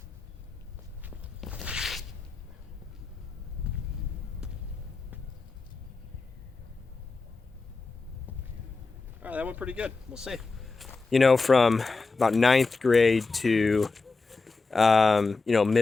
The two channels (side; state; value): right; quieter; 4.0 dB